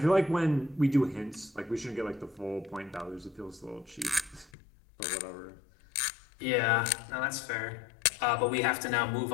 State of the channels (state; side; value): drops out; right; at 4.5 s